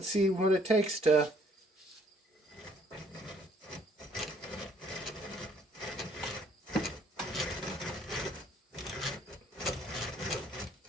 see what it takes to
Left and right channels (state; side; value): normal; both; correlation 0.64